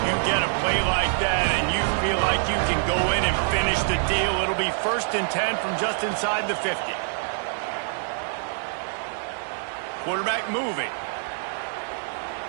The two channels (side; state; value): left; silent; digital silence